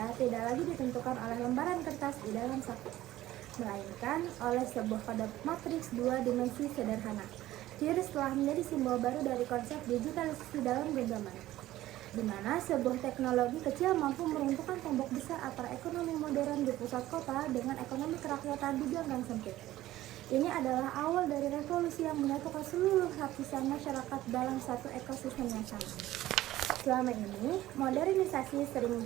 tidak lagi ditentukan oleh lembaran kertas di dalam saku, melainkan oleh sebuah kode matriks dua dimensi sederhana. QRIS telah menjadi simbol baru dari konsep digitalisasi dalam genggaman, di mana sebuah teknologi kecil mampu meruntuhkan tembok besar antara ekonomi modern di pusat kota dengan ekonomi kerakyatan di ganggang sempit. Ini adalah awal dari revolusi yang menyatukan seluruh lapisan masyarakat dalam satu ekosistem yang sama. Selama ini, modernisasi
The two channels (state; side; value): quieter; left; 15.1 dB